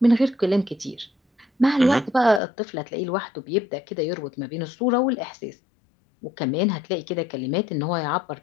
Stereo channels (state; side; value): drops out; right; at 2.4 s